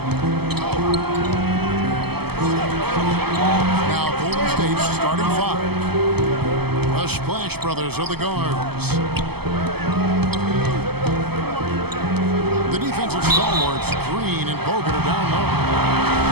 Now Golden State's starting five. The Splash Brothers are the guards. The defensive stalwarts, Green and Bogut, are down low.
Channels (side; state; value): left; late; 0.96 ms